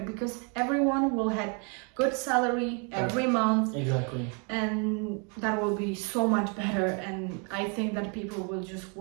because everyone will have good salary every month. Exactly. And that will be so much better, and I think that people will just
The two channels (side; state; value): left; quieter; 36.0 dB